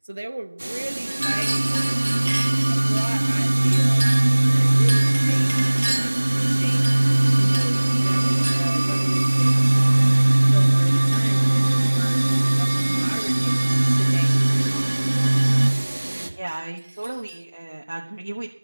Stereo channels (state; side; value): inverted; both; correlation -1.00